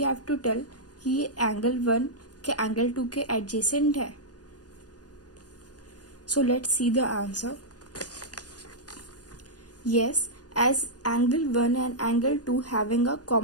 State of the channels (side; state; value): right; late; 0.69 ms